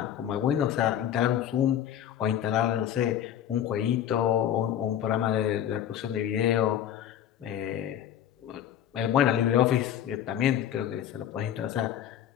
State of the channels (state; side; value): quieter; right; 10.3 dB